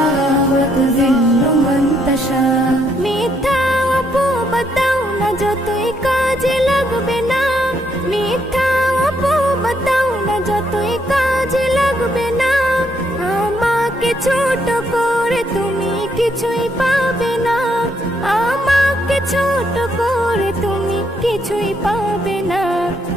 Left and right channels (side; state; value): both; normal; correlation 0.73